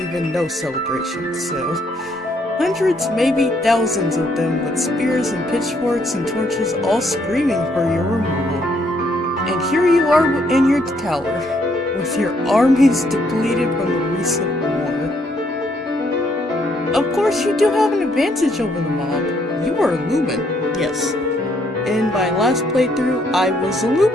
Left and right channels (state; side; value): normal; both; correlation 0.70